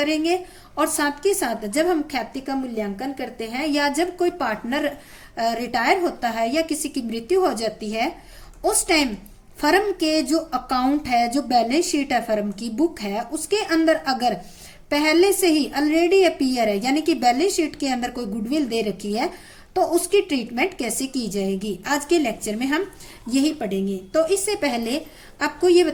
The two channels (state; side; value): identical; both; correlation 1.00